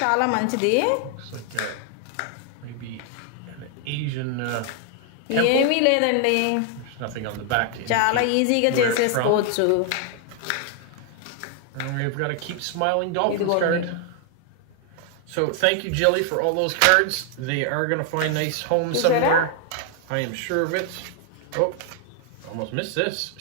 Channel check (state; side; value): different; both; correlation 0.00